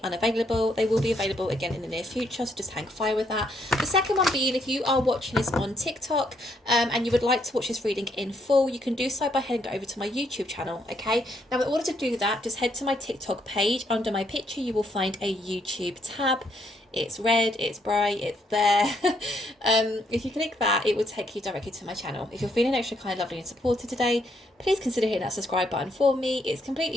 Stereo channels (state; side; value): normal; both; correlation 0.73